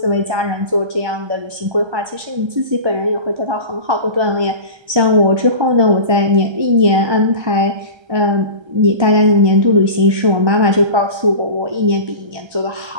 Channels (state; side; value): late; left; 1.3 ms